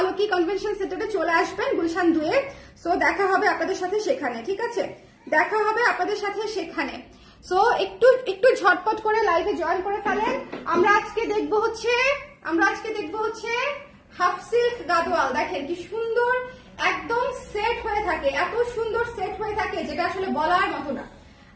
কনভেনশন সেন্টারে চলে আসবেন গুলশান 2-এ। সো দেখা হবে আপনাদের সাথে সেখানে, ঠিক আছে, দেখা হবে আপনাদের সাথে সেখানে। সো একটু একটু ঝটপট করে লাইভে জয়েন করে ফেলেন। আমরা আজকে দেখবো হচ্ছে হাফ সিল্ক গাদোয়াল। দেখেন কি সুন্দর, একদম সেট হয়ে থাকে, এত সুন্দর সেট হয়ে থাকে যেটা আসলে বলার মতো না।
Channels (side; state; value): both; identical; correlation 1.00